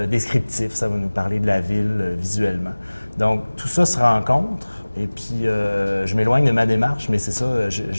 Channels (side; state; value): both; inverted; correlation -1.00